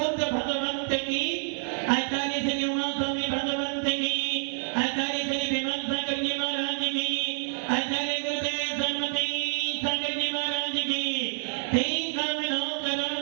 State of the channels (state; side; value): silent; left; digital silence